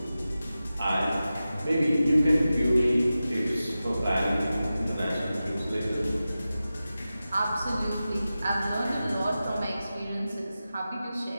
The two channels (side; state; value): both; inverted; correlation -0.94